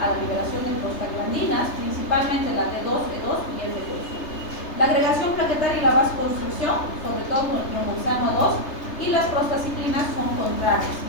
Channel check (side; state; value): right; late; 3.3 ms